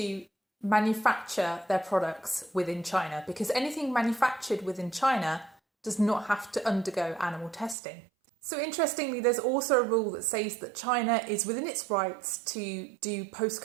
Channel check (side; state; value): left; drops out; at 7.8 s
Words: manufacture their products within China, because anything manufactured within China does not have to undergo animal testing. So interestingly, there's also a rule that says that China is within its rights to do